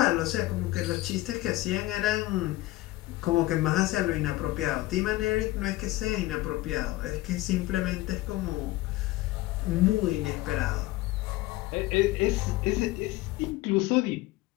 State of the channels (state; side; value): quieter; right; 18.0 dB